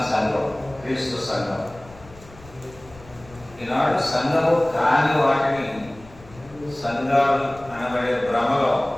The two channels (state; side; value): noise; left; rumble, 22 dB below the sound